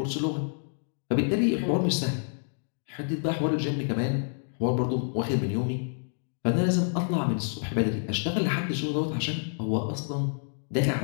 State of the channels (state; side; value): silent; right; digital silence